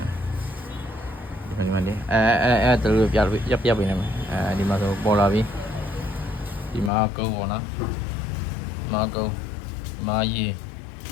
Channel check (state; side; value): drops out; right; at 6.9 s